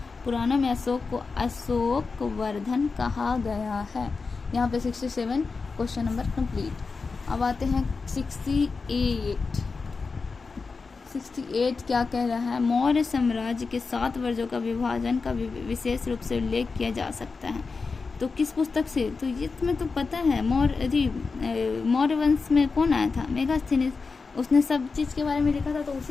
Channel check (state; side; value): quieter; right; 4.5 dB